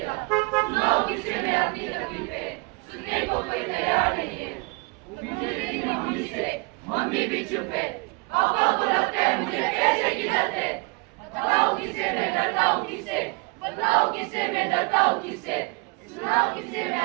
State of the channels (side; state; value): left; quieter; 28.5 dB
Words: सुनाओ किसे मैं अपनी तकलीफें, सुनने को कोई तैयार नहीं है। मुझे मेरी मम्मी से, मम्मी भी चुप है। पापा को लगता है मुझे पैसे की डर है। बताओ किससे मैं डरता हूँ, किससे? बताओ किससे मैं डरता हूँ, किससे? सुनाओ किससे मैं